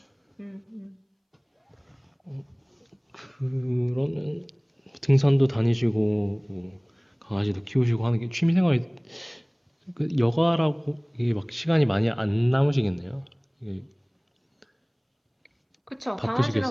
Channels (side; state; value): both; identical; correlation 1.00